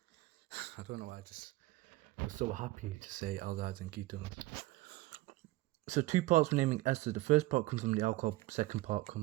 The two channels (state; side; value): quieter; left; 18.8 dB